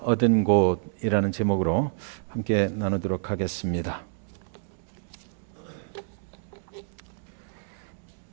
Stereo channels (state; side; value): silent; left; digital silence